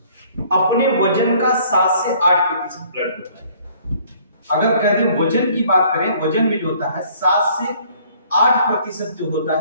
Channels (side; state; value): both; inverted; correlation -0.58